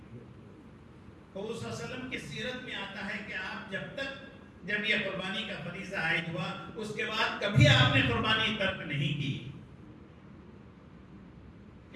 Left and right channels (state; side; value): identical; both; correlation 1.00